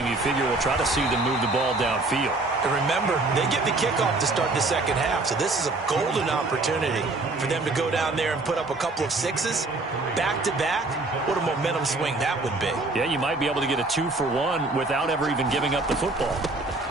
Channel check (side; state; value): left; quieter; 3.2 dB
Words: you figure we'll try to see them move the ball downfield. And remember, they get the kickoff to start the second half, so this is a golden opportunity for them to go down there and put up a couple of 6s back-to-back. What a momentum swing that would be. Yeah, you might be able to get a 2-for-1 without ever even giving up the football.